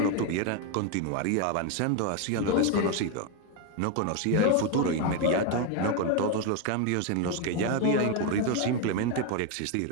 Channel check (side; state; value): both; different; correlation 0.02